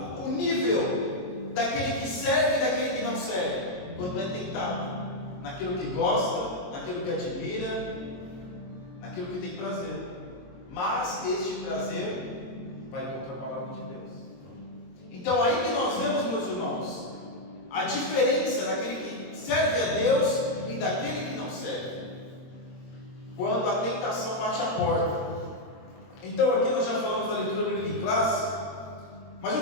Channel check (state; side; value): late; right; 22 ms